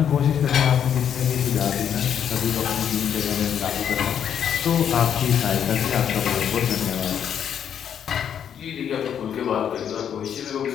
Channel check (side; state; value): right; quieter; 8.7 dB